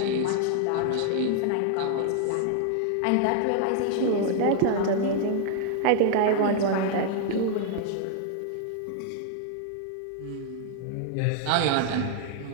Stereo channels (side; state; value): both; different; correlation -0.01